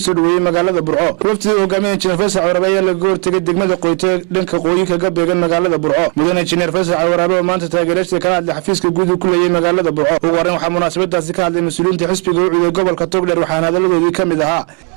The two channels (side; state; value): left; quieter; 37.4 dB